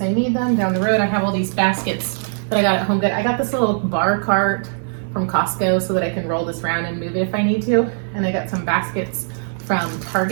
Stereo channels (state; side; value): silent; left; 57 dB below the other